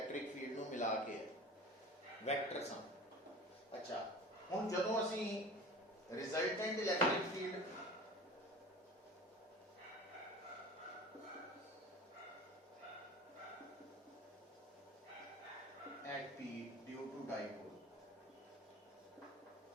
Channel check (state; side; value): normal; both; correlation 0.38